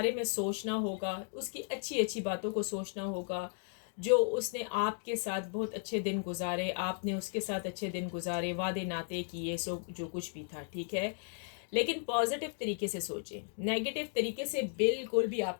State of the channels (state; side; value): silent; right; 54 dB below the other